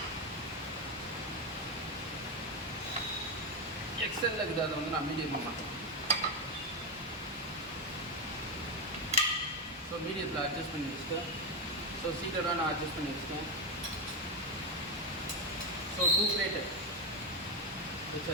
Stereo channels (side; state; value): both; normal; correlation 0.08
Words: எக்ஸலில் இருக்குது, அதை வந்து நான் மீடியம் பண்ண மாட்டேன். ஸோ மீடியத்தில் அட்ஜஸ்ட் பண்ணி வச்சுட்டேன். ஸோ சீட்டடாக நான் அட்ஜஸ்ட் பண்ணி வச்சுட்டேன். ஸோ 2 பிளேட்டு